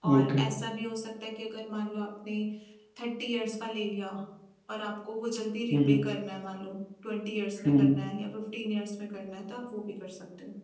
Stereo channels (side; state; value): both; identical; correlation 1.00